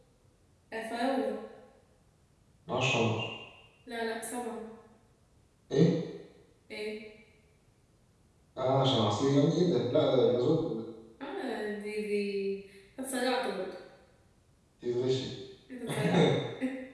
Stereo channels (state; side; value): identical; both; correlation 1.00